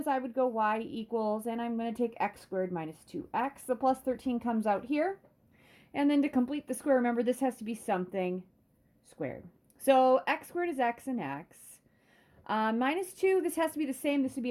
I would go y equals, and I'm going to take x squared minus 2x. The plus 13 comes out here. And then to complete the square, remember this has to be something squared. So x squared is x and x. Minus 2, this has to be the same. This would be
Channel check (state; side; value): identical; both; correlation 1.00